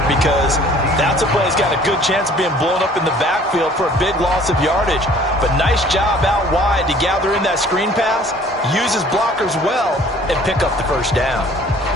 because that's a play that's got a good chance of being blown up in the backfield for a big loss of yardage. But nice job out wide to gather in that screen pass, use his blockers well, and pick up the first down.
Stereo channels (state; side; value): normal; both; correlation 0.53